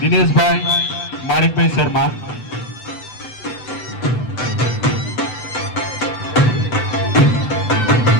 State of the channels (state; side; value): late; right; 7.9 ms